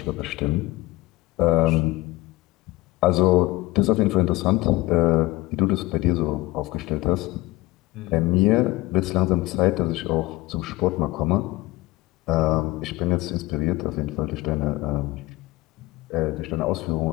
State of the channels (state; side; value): quieter; right; 19.9 dB